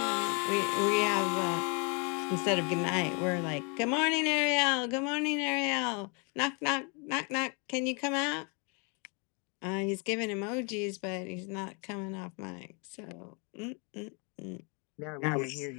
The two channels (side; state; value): right; quieter; 34.8 dB